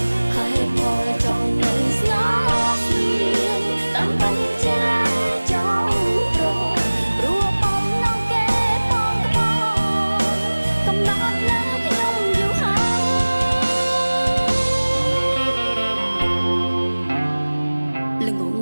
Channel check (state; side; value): inverted; both; correlation -1.00